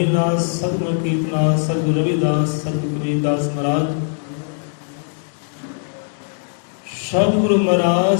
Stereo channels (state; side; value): silent; right; 66 dB below the other